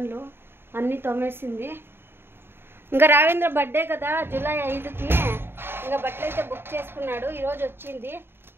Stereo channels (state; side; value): late; left; 0.11 ms